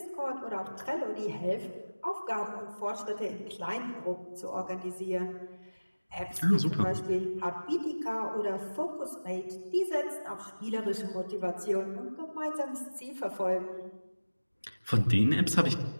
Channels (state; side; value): inverted; both; correlation -1.00